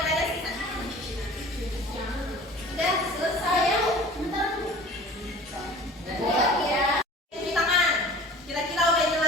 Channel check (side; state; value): both; normal; correlation 0.43